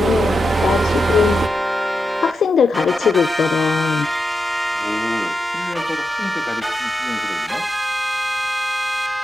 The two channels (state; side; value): normal; both; correlation 0.88